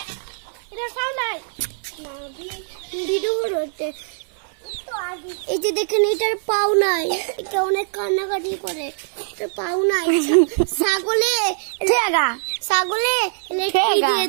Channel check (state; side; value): silent; left; 62 dB below the other